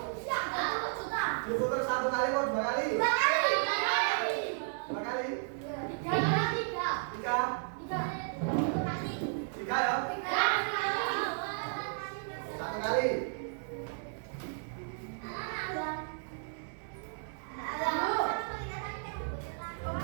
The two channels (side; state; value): left; silent; digital silence